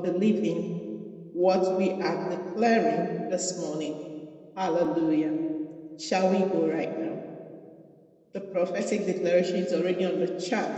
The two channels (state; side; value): identical; both; correlation 1.00